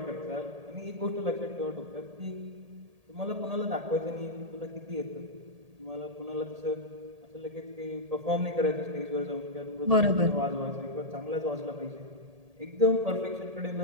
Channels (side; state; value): left; late; 1.8 ms